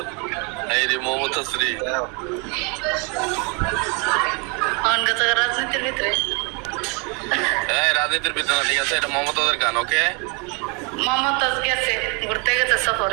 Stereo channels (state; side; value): quieter; left; 33.0 dB